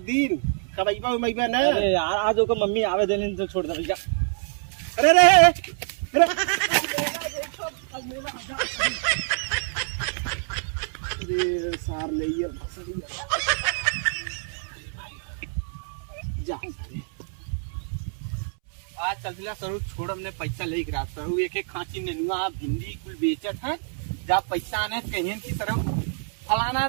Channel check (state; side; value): silent; left; 61 dB below the other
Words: दिन कबैबा उमैबा ना। अरे यार आज ओकर मम्मी आवे देने तो छोड़ दे भैया। अरे अरे सार ले जा आज चलतिला सरू छोड़ हमने पैसा ले गिरा सरू एक खांची नेनुआ भिंडी कुल बेचत है जब पैसा आने कहीं की सरू फलाना